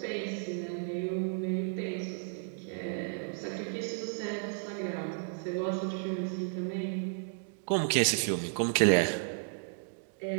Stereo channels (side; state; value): left; silent; digital silence